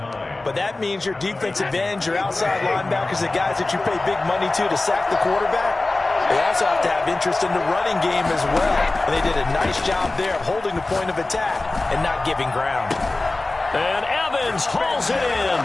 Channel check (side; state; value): right; quieter; 3.1 dB